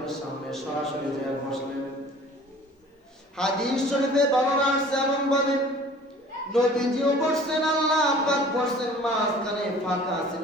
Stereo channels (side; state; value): both; normal; correlation 0.47